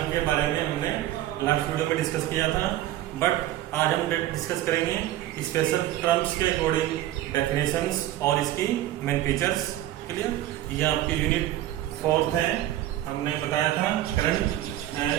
के बारे में हमने लास्ट वीडियो में डिस्कस किया था। बट आज हम डिस्कस करेंगे स्पेशल टर्म्स के अकॉर्डिंग डेफिनेशंस और इसकी मेन फीचर्स। क्लियर? ये आपकी यूनिट 4 है। हमने बताया था करंट,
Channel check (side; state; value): left; quieter; 13.9 dB